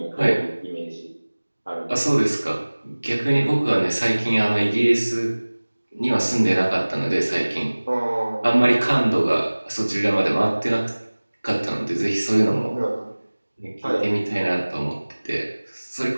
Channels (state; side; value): inverted; both; correlation -1.00